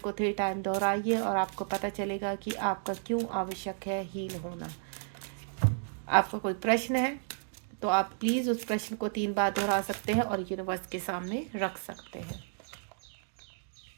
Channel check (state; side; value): silent; left; digital silence